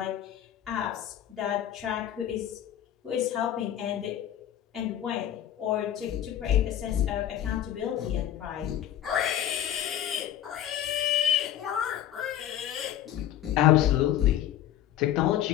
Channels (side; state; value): right; quieter; 11.5 dB